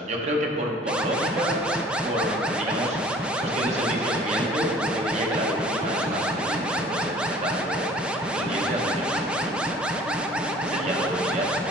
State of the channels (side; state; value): both; normal; correlation 0.50